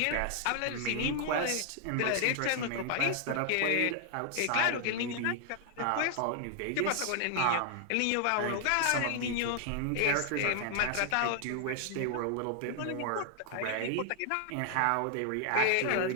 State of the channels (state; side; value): different; both; correlation 0.00